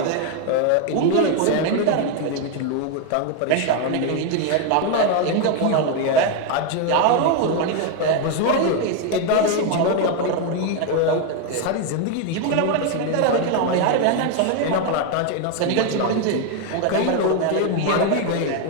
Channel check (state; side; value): different; both; correlation 0.01